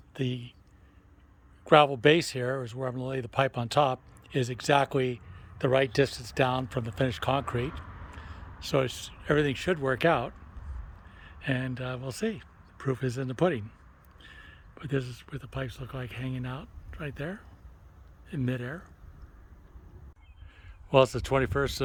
the gravel base here is where I'm going to lay the pipe on top, is exactly the right distance down from the finished concrete. So everything should work out, and we'll see. The proof is in the pudding. But this is what the pipes look like hanging out right there in midair. Well, it's the 21st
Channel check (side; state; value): both; identical; correlation 1.00